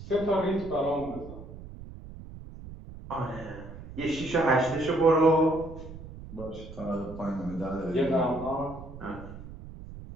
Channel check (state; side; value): noise; right; rumble, 14 dB below the sound